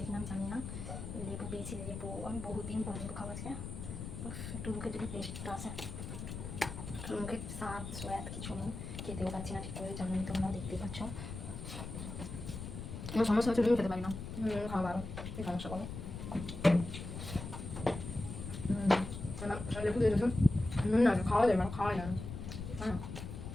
নাম জানি না। লেবু পেয়েছি, লেবু আমি বহুদিন পর লেবু খাওয়া আজকে, একটু মুখে যদি টেস্টটা আসে, মুখে স্বাদ সোয়াদ কিছু নেই, খেতেও পাচ্ছি না ঠিক করে, জানি তোমরা দেখতে পাচ্ছ। আমার সমস্যা হচ্ছে নুন খেতে পারি না, খাওয়া ভালো, এই সমস্যা করো। লেবু দিয়ে দিয়েছো, নুন না খাওয়া যায় না, খাওয়াই না, হ্যাঁ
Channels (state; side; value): noise; left; rumble, 8 dB below the sound